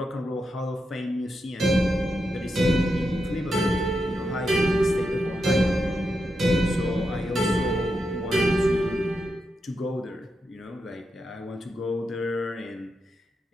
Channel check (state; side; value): normal; both; correlation 0.86